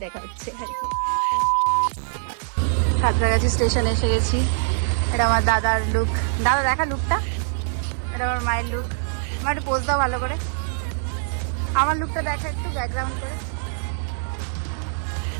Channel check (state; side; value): silent; left; digital silence